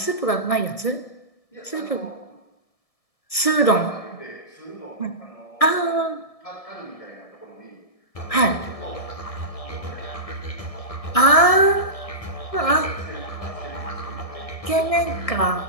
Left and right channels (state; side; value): late; right; 1.7 ms